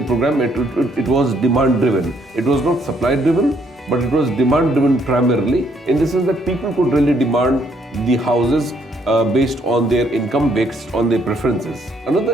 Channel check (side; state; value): both; normal; correlation 0.69